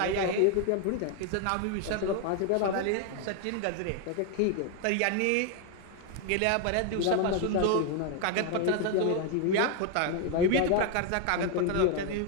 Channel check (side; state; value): both; different; correlation 0.01